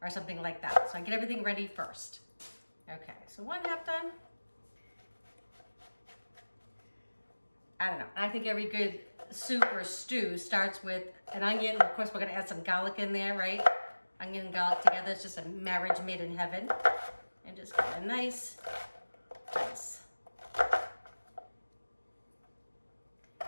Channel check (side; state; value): both; inverted; correlation -1.00